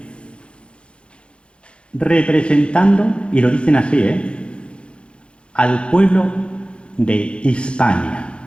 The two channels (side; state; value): right; late; 0.057 ms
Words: representando, y lo dicen así, al pueblo de Hispania.